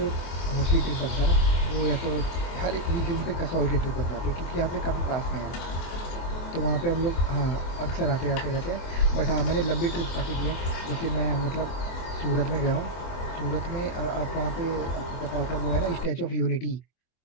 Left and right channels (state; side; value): late; right; 24 ms